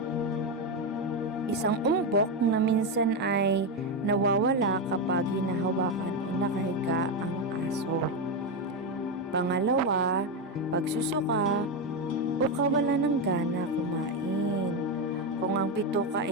Isang umbok na minsan ay nawawala kapag hinahawakan o nakahiga ang aso. Pangalawa, pagsusuka o kawalan ng gana kumain kung ang bituka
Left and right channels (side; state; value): both; normal; correlation 0.09